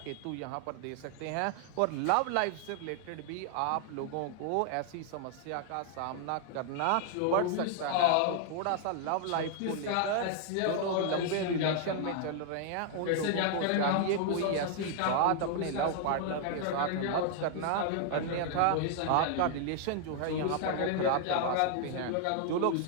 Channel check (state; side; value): different; both; correlation 0.00